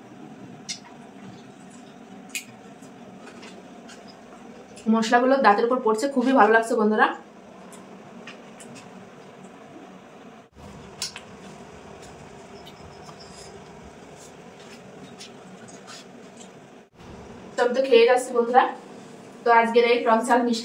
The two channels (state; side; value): identical; both; correlation 1.00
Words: মশলাগুলো দাঁতের উপর পড়ছে, খুবই ভালো লাগছে বন্ধুরা। আমি তো খেয়ে যাচ্ছি বন্ধুরা। তো আজকের এই টক ঝাল